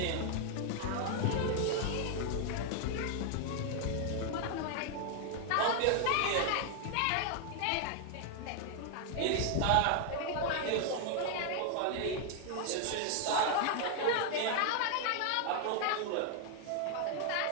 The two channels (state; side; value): different; both; correlation 0.00